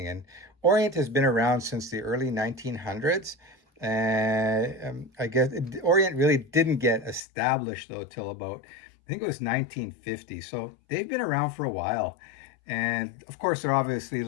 And Orient has been around since the early 1900s. I guess Orient really didn't get established though till about, I think it was 1950. So they've been around for a while, and of course they're obviously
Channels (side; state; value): right; drops out; at 7.2 s